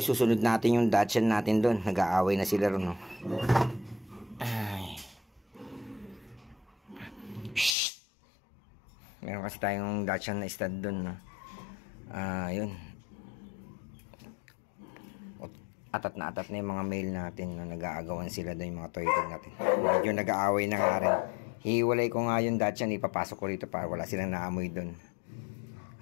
susunod natin yung Dachshund natin doon. Nag-aaway na sila ron, no? Ay. Shhh! Meron kasi tayong Dachshund na stud doon, no? Yun. Atat na yung mga male natin, no? Nag-aagawan sila doon, yung mga toy dog natin. Medyo nag-aaway na nga rin. Hiwalay ko nga yung Dachshund, ipapasok ko rito para wala silang naamoy doon.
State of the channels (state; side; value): drops out; right; at 7.8 s